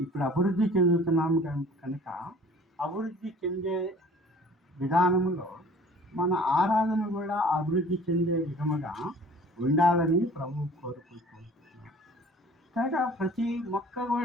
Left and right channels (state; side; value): normal; both; correlation 0.48